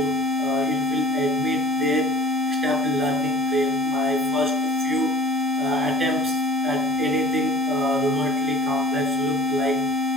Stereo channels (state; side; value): normal; both; correlation 0.46